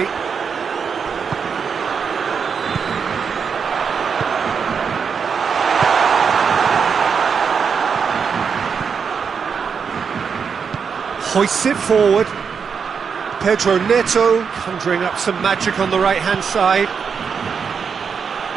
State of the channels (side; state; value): left; quieter; 6.3 dB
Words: Hoists it forward. Pedro Neto conjuring up some magic on the right-hand side.